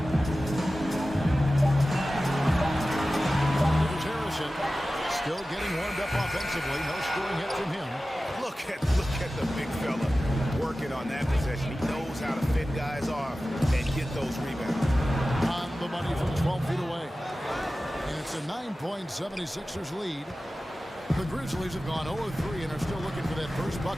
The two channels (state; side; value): normal; both; correlation 0.95